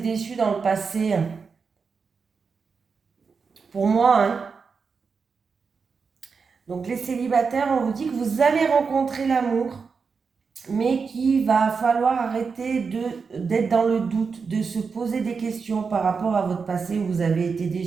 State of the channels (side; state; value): left; quieter; 5.3 dB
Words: dans le passé. Pour moi, hein. Donc, les célibataires, on vous dit que vous allez rencontrer l'amour, mais qu'il va falloir arrêter d'être dans le doute, de se poser des questions par rapport à votre passé où vous avez été